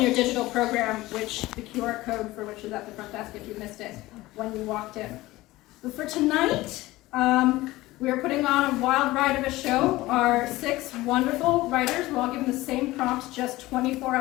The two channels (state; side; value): quieter; right; 18.4 dB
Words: your digital program, which the QR code for which is at the front desk if you missed it when you walked in. But for tonight, we are putting on a wild ride of a show. Our 6 wonderful writers were all given the same prompt just 24